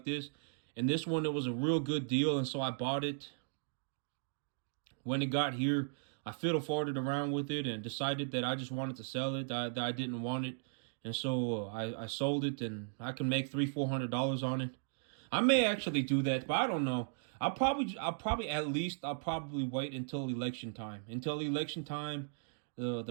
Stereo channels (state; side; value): silent; left; digital silence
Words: this, and this one, it was a real good deal, and so I bought it. When it got here, I fiddle-farted around with it and decided that I just wanted to sell it, that I didn't want it. And so I sold it, and I can make $300-400 on it. I may actually do that, but I don't know. I'll probably wait until election time.